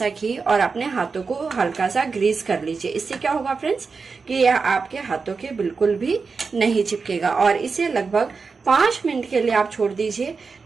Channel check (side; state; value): left; quieter; 4.8 dB